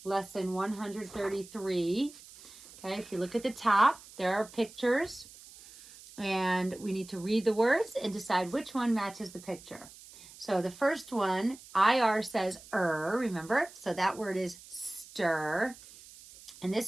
lesson 133. Okay, if you look at the top, there are pictures. And we need to read the words and decide which one matches the picture. So the first one, IR says remember? So that word is stir. And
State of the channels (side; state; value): right; noise; hiss, 19 dB below the sound